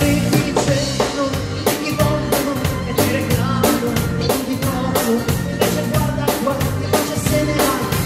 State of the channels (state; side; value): identical; both; correlation 1.00